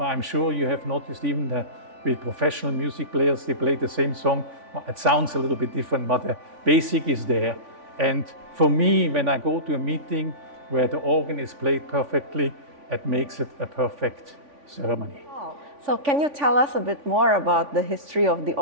I'm sure you have noticed even that with professional music players, they play the same song. It sounds a little bit different, but the basic is there. And for me, when I go to a meeting, where the organ is played perfectly and makes it a perfect ceremony. So can you tell us a bit more about the history of the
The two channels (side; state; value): left; late; 3.5 ms